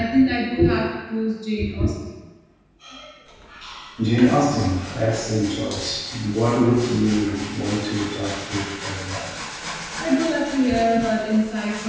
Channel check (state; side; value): identical; both; correlation 1.00